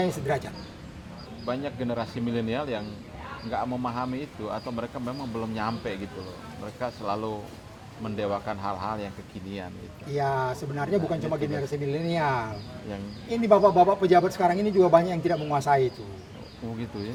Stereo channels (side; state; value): both; identical; correlation 1.00